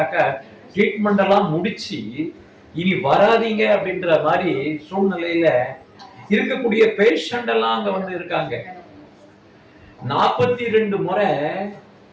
ட்ரீட்மெண்ட் எல்லாம் முடிச்சு இனி வராதீங்க அப்படின்ற மாதிரி சூழ்நிலையில இருக்கக்கூடிய பேஷண்ட் எல்லாம் அங்க இருக்காங்க. 42 முறை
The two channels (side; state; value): both; identical; correlation 1.00